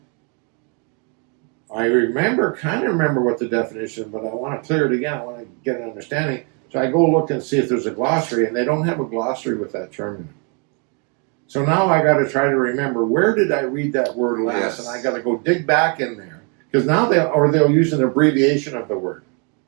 I kind of remember what the definition, but I want to clear it again. I want to get an understanding. So I go look and see if there's a glossary, and they don't have a glossary with that term in it. So now I got to try to remember, where did I read that word last? Yes. And I got to go dig back in there. Because now they'll use an abbreviation of the word.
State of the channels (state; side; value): quieter; left; 36.5 dB